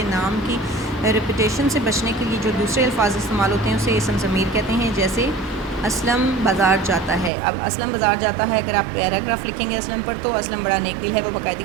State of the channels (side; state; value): left; drops out; at 7.3 s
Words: नाम की रेपुटेशन से बचने के लिए जो दूसरे अल्फाज इस्तेमाल होते हैं उसे इसम ज़मीर कहते हैं। जैसे असलम बाज़ार जाता है। अब असलम बाज़ार जाता है, अगर आप पैराग्राफ लिखेंगे असलम पर तो असलम बड़ा नेक दिल है, वो